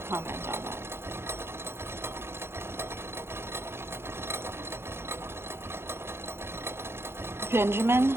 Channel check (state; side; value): late; left; 0.12 ms